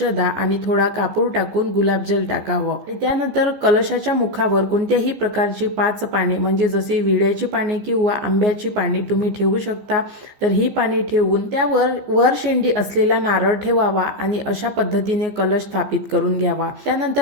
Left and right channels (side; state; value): left; late; 15 ms